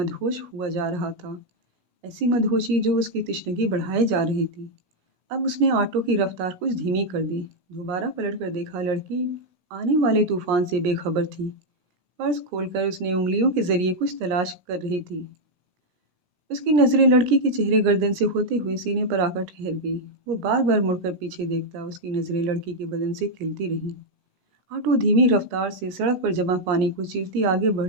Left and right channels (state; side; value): late; left; 17 ms